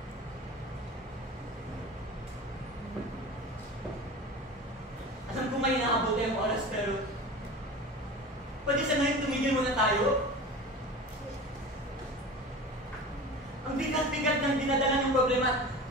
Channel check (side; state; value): both; normal; correlation 0.34